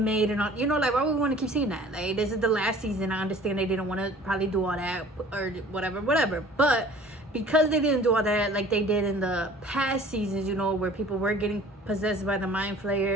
made and all, you know, like, why would we want to keep seeing that? Like, this is the last season. I understand they didn't want to probably do all that or whatever, but because they didn't do all that like they did in the past seasons, you know, where people were getting possessed by the mind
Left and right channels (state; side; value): normal; both; correlation 0.48